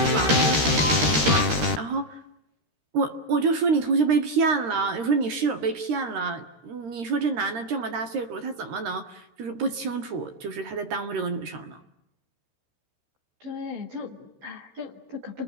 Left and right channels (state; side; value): late; left; 13 ms